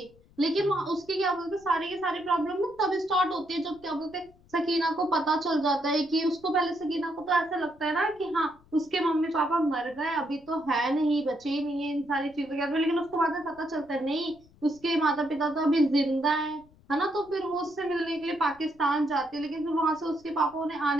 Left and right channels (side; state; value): left; noise; rumble, 28 dB below the sound